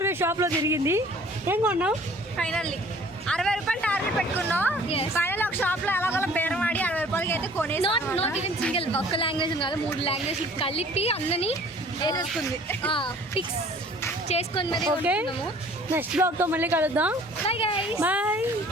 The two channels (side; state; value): both; normal; correlation 0.52